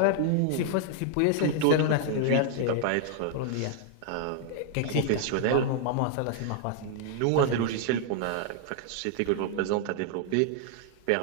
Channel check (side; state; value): both; different; correlation 0.00